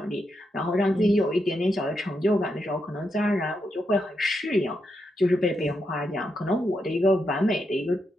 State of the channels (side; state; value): both; normal; correlation 0.83